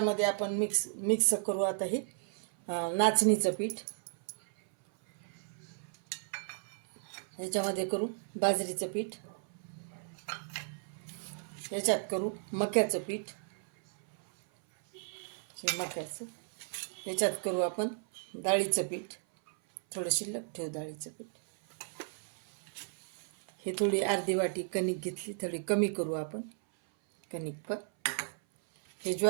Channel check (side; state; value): left; silent; 55 dB below the other